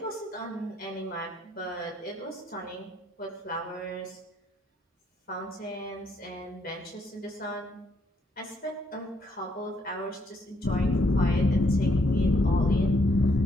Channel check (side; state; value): both; normal; correlation 0.72